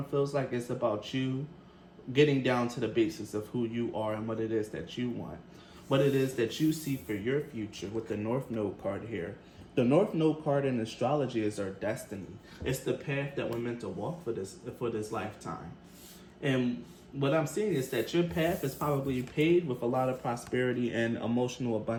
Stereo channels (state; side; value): identical; both; correlation 1.00